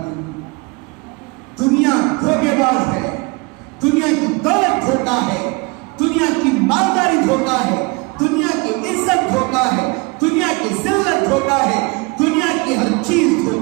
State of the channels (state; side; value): quieter; left; 27.5 dB